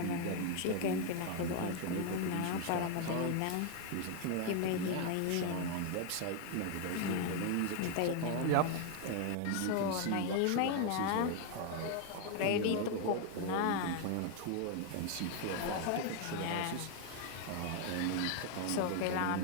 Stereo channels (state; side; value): different; both; correlation 0.01